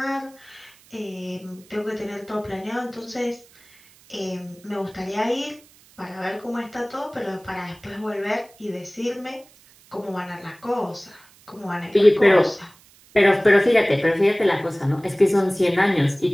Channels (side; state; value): right; noise; hiss, 27 dB below the sound